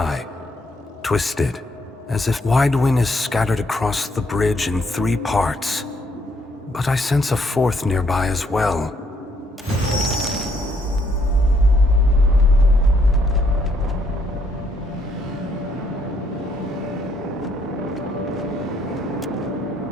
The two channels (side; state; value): both; normal; correlation 0.70